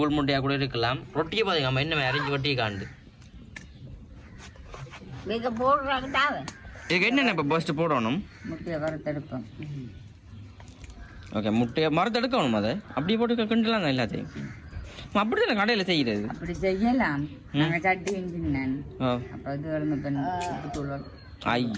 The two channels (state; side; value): identical; both; correlation 1.00